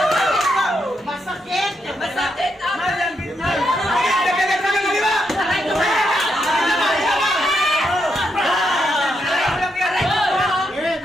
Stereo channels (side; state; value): both; normal; correlation 0.81